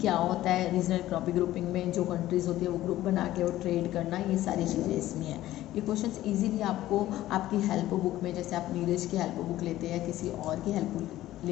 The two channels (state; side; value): quieter; right; 14.8 dB